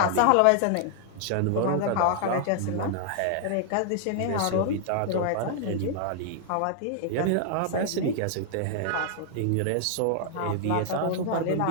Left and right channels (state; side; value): different; both; correlation 0.00